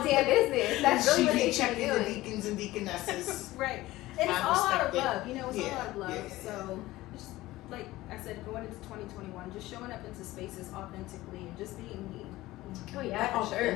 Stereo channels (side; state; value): right; quieter; 17.5 dB